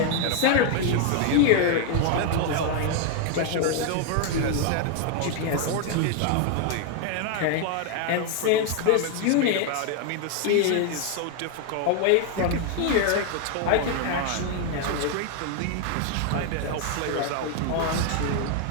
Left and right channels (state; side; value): different; both; correlation 0.01